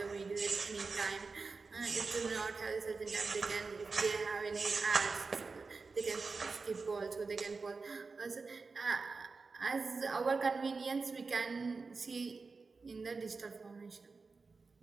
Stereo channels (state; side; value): quieter; left; 4.3 dB